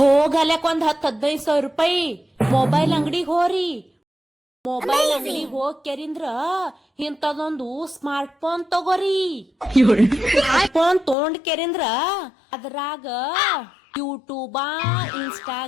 ಒಂದ್ 10-15 ರೂಪಾಯಿ ಮೊಬೈಲ್ ಅಂಗಡಿಗೆ ಹೋರಿ. ಮೊಬೈಲ್ ಅಂಗಡಿಗೆ ಹೋಗ್ ಕೆರಿಂದ್ರ ಇಂತದೊಂದು ಸ್ಮಾರ್ಟ್ ಫೋನ್ ತಗೋರಿ. ಫೋನ್ ತೊಗೊಂಡ್ ಕೆರಿಂದ್ರ ಅದ್ರಾಗ ಯೂಟ್ಯೂಬ,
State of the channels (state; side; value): drops out; right; at 11.2 s